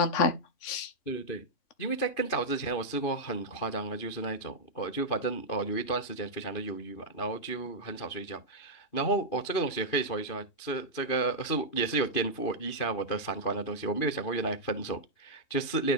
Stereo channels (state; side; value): late; right; 2.5 ms